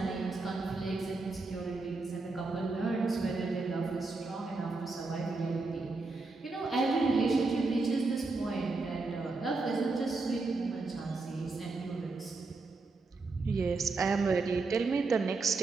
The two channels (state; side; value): quieter; left; 3.7 dB